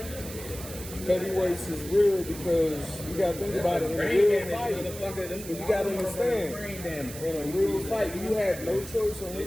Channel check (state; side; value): noise; right; hiss, 12 dB below the sound